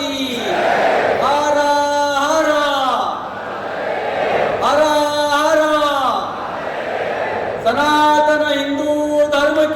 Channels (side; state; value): both; identical; correlation 1.00